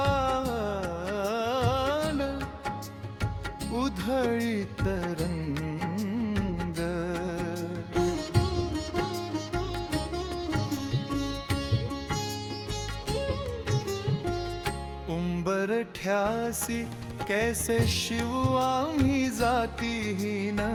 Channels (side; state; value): both; identical; correlation 1.00